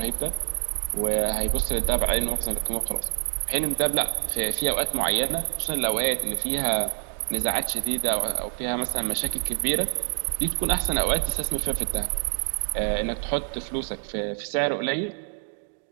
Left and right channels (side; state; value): left; silent; 61 dB below the other